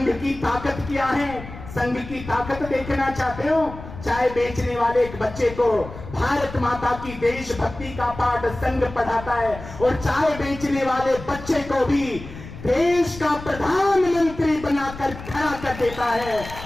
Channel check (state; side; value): noise; left; rumble, 13 dB below the sound